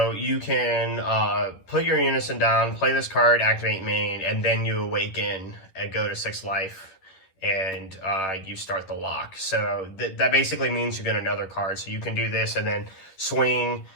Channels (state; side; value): late; right; 11 ms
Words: you can put your Unison down, play this card, activate main, and then you awaken and go to 6 life, and you start the lock. So that basically means you get another card. So you can do this and then swing